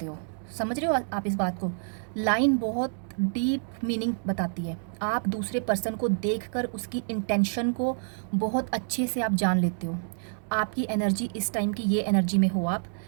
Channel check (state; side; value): silent; left; digital silence